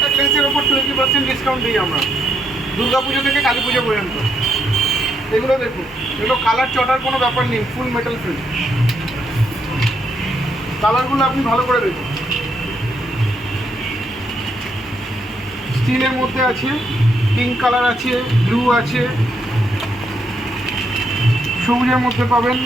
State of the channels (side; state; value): both; normal; correlation 0.76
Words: লেন্সের ওপর 20% ডিসকাউন্ট দিই আমরা, দুর্গা পুজো থেকে কালী পুজো পর্যন্ত। এগুলো দেখুন, এগুলো কালার চটার কোনো ব্যাপার নেই, ফুল মেটাল ফ্রেম। কালারগুলো আপনি ভালো করে দেখুন। স্টিলের মধ্যে আছে, পিঙ্ক কালার আছে, ব্লু আছে, সবুজের মধ্যে পাবেন।